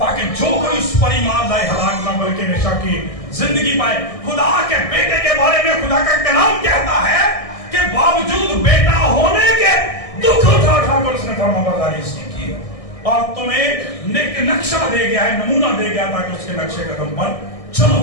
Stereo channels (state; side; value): late; right; 1.6 ms